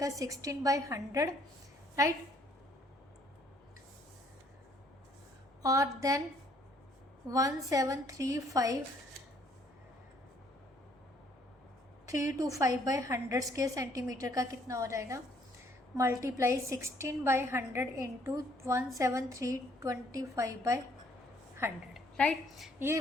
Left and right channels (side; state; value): both; normal; correlation 0.64